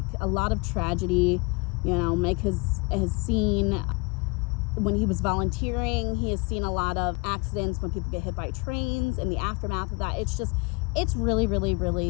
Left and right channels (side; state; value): right; quieter; 28.7 dB